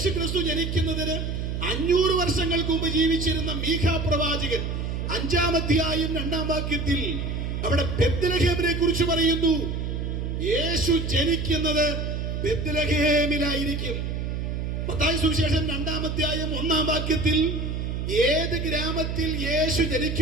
ജനിക്കുന്നതിന് 500 വർഷങ്ങൾക്ക് മുമ്പ് ജീവിച്ചിരുന്ന മീഖാ പ്രവാചകൻ 5-ാം അധ്യായം 2-ാം വാക്യത്തിൽ അവിടെ ബെത്ലഹേമിനെ കുറിച്ച് പറയുന്നു. യേശു ജനിക്കുന്നത് ബെത്ലഹേമിലായിരിക്കും. മത്തായി സുവിശേഷം 2-ാം അധ്യായം 1-ാം വാക്യത്തിൽ ഏത് ഗ്രാമത്തിൽ യേശു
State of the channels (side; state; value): right; noise; hum, 3 dB below the sound